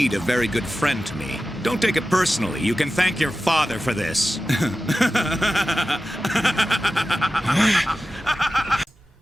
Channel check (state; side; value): normal; both; correlation 0.94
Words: a very good friend to me. Don't take it personally. You can thank your father for this.